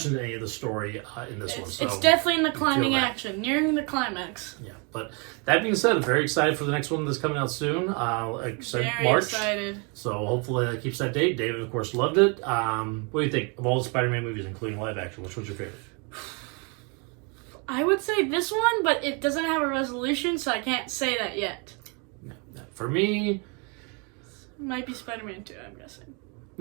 to any of the story in this one. So it's definitely in the climbing action, nearing the climax. Yeah, but that being said, I'm very excited for the next one that's coming out soon. Like I said, March. Excited. So hopefully that keeps that date. David, of course, loved it. What do you think of all the Spider-Man movies, including live action? Which one's your favorite? I would say this one, but it doesn't have a resolution, so I can't say that yet. No. For me, it might be Spider-Man 2, I'm guessing.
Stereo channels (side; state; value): left; quieter; 33.6 dB